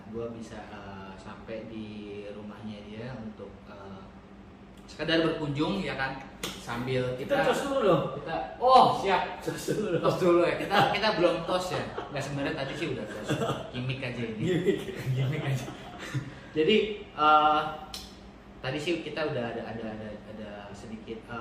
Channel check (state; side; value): identical; both; correlation 1.00